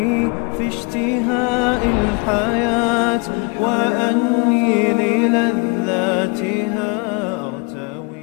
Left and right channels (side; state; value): right; quieter; 32.2 dB